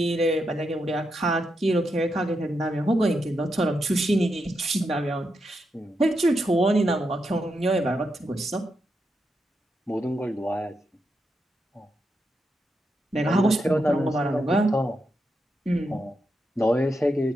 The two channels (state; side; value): normal; both; correlation 0.84